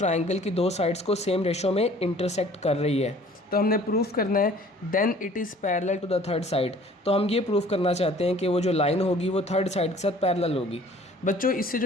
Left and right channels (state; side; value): normal; both; correlation 0.52